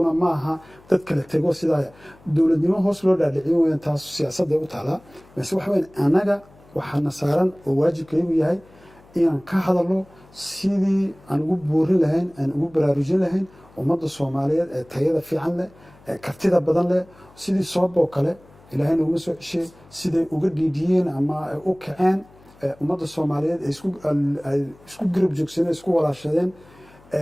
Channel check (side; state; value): left; noise; hum, 26 dB below the sound